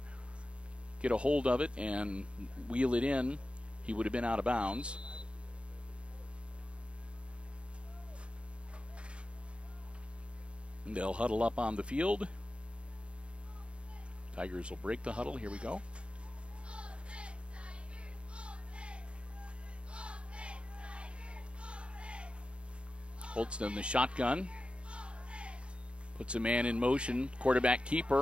get a hold of it and wheel it in. He would have been out of bounds. And they'll huddle up on the field. Tigers will break the huddle. Here we go. Holtz in the shotgun. Puts a man in motion. Quarterback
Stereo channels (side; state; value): left; late; 0.059 ms